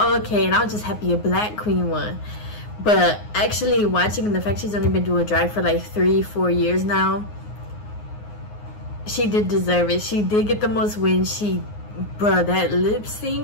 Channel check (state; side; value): late; right; 9.6 ms